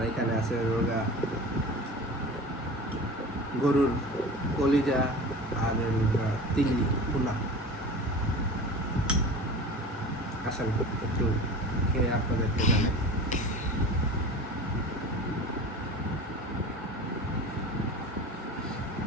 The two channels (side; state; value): both; normal; correlation 0.35